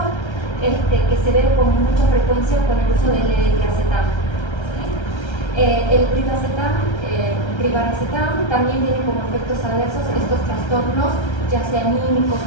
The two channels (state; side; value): late; right; 1.3 ms